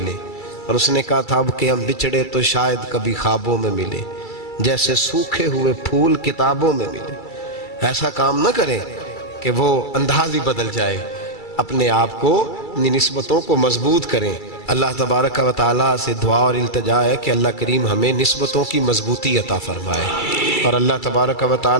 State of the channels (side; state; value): right; late; 2.3 ms